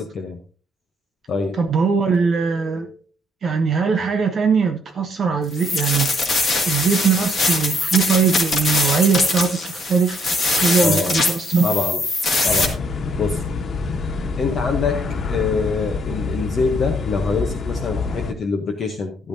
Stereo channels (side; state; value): both; normal; correlation 0.69